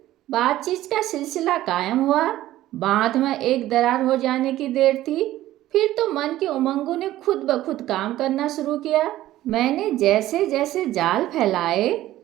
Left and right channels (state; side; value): quieter; left; 14.7 dB